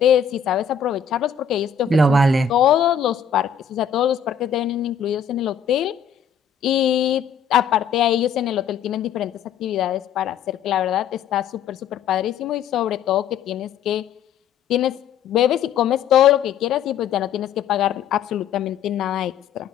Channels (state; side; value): quieter; right; 7.5 dB